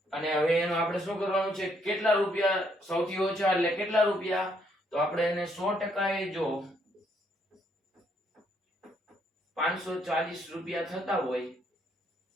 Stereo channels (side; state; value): both; normal; correlation 0.71